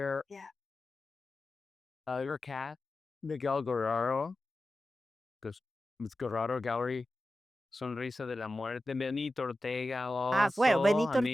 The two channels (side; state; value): both; normal; correlation 0.94